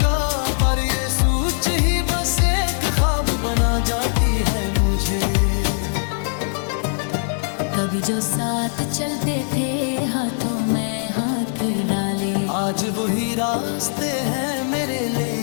पर ये सोच ही बस एक ख्वाब बना जाती है मुझे। कभी जो साथ चलते थे हाथों में हाथ डाले, आज वही रास्ते हैं मेरे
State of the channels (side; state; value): right; silent; digital silence